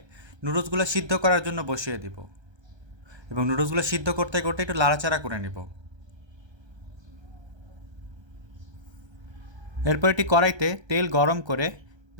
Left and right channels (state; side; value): late; left; 1.3 ms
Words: নুডলসগুলো সিদ্ধ করার জন্য বসিয়ে দিব এবং নুডলসগুলো সিদ্ধ করতে করতে একটু লাড়াচাড়া করে নিব। এরপর একটি কড়াইতে তেল গরম করে